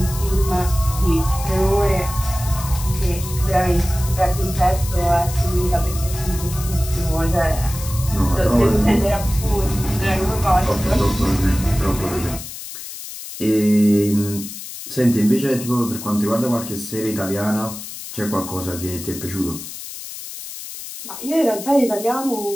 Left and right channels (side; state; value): left; noise; hiss, 11 dB below the sound